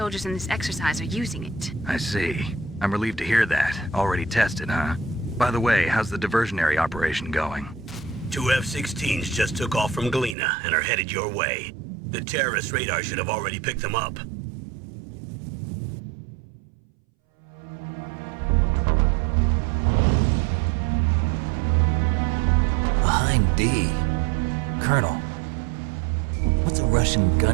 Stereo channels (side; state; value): left; drops out; at 10.4 s